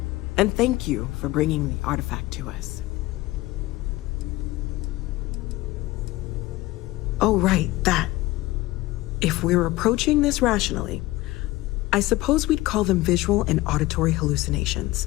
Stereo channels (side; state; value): right; quieter; 18.6 dB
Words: And thank you for bringing the artifact to us. Oh, right, that. If we're approaching this rationally, I suppose we'd call them visual and auditory